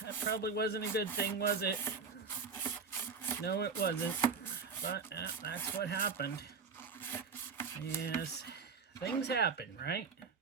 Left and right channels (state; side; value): quieter; left; 5.2 dB